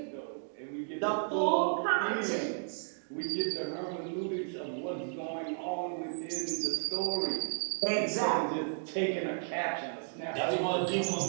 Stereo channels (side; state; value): left; silent; digital silence